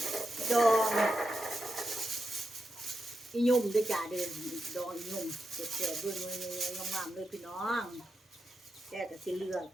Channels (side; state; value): both; normal; correlation 0.87